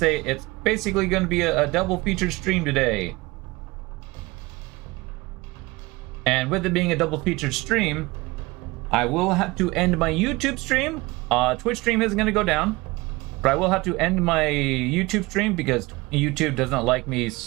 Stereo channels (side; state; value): left; quieter; 22.3 dB